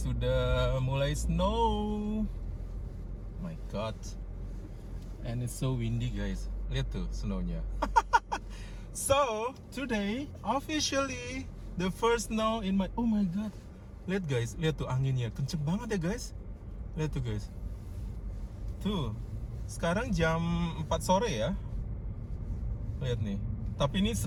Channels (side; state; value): both; identical; correlation 1.00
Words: mulai snow. My God. And it's so windy guys. Lihat tuh snownya. So today officially the first snow in my. Oh my God. Lihat guys, lihat tuh anginnya kenceng banget ya guys. Lihat tuh guys. Tuh. Sekarang jam 4 sore ya. Lihat nih. Tapi ini